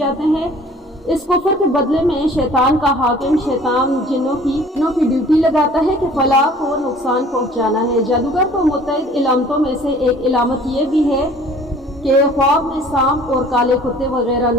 हैं। इस कुफ्र के बदले में शैतान का हाकिम शैतान जिन्नों की ड्यूटी लगाता है कि फलाह को नुकसान पहुँचाना है। जादूगर को मुतअद्दिद इलामतों में से एक इलामत ये भी है कि ख्वाब में सांप और काले कुत्ते वगैरह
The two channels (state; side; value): normal; both; correlation 0.51